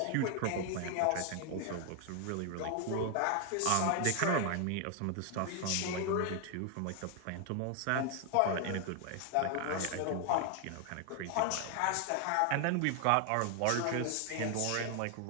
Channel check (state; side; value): different; both; correlation 0.00